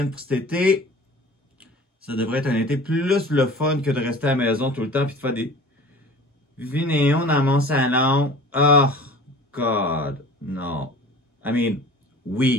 pour cet été. Ça devrait être un été plus le fun que de rester à la maison tout le temps puis de faire des vidéos dans mon salon. Oh, God, non. I mean,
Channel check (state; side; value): normal; both; correlation 0.42